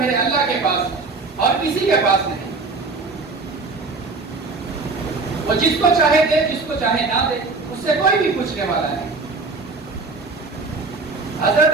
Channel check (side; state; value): left; quieter; 3.9 dB